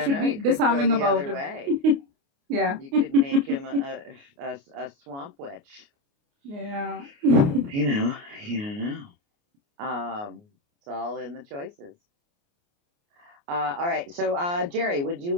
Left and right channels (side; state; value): left; late; 29 ms